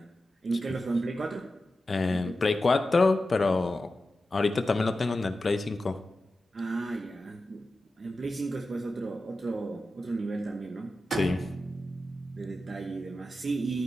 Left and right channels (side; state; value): both; normal; correlation 0.92